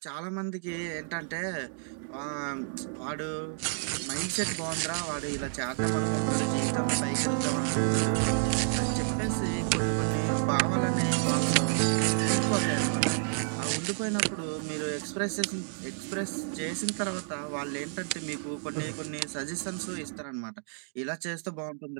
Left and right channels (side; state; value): left; silent; digital silence